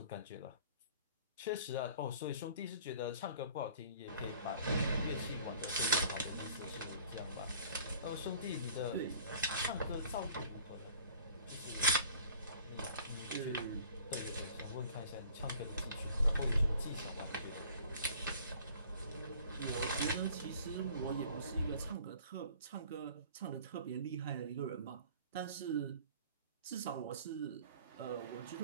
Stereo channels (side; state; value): both; inverted; correlation -0.50